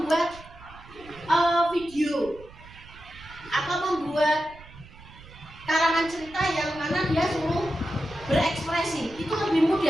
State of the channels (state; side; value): noise; right; rumble, 20 dB below the sound